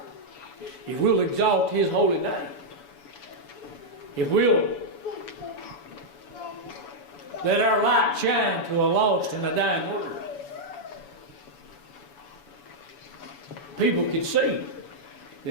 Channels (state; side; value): late; right; 7.0 ms